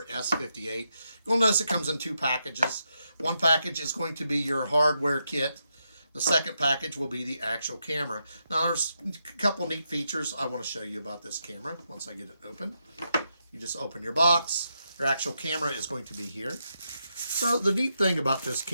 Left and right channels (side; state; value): both; inverted; correlation -0.83